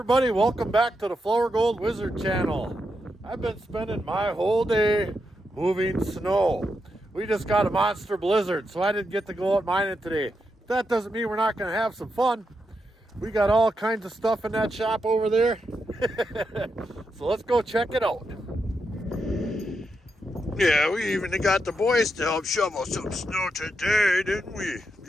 welcome back to the Flourgoldwizards channel. I've been spending my whole day moving snow. We just got a monster blizzard, so I didn't get to go out mining today. That doesn't mean we're not going to have some fun. We got all kinds of stuff in that shop over there. So let's go check it out. Yeah, we even got the boys to help shovel some snow today, didn't we?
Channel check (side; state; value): both; normal; correlation 0.84